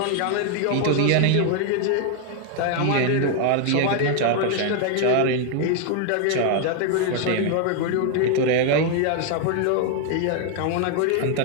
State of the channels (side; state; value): both; different; correlation 0.01